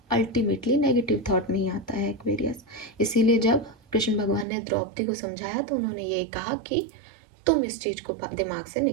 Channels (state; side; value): drops out; left; at 4.5 s